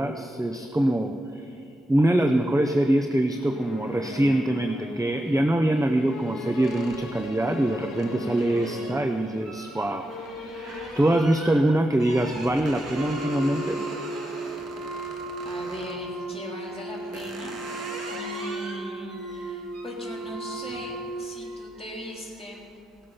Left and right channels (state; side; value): normal; both; correlation 0.87